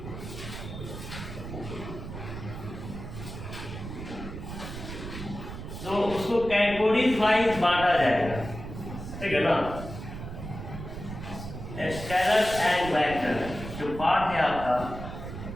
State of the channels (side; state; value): right; noise; rumble, 9 dB below the sound